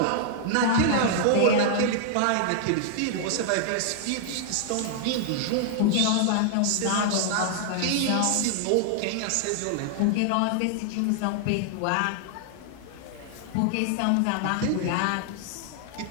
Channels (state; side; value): different; both; correlation 0.00